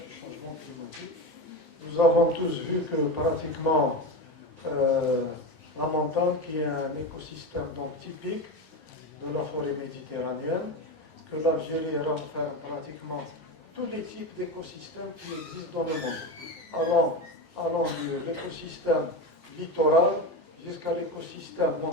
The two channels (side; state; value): both; normal; correlation 0.19